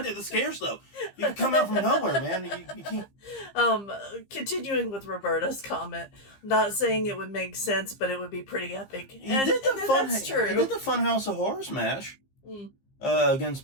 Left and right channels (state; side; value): late; right; 15 ms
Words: at the scares, though. You can come out from nowhere, man. You can't. Continuing with Roberta's comment, not saying it would make sense, but it would be pretty epic. That's true. He did the Funhouse of Horrors match against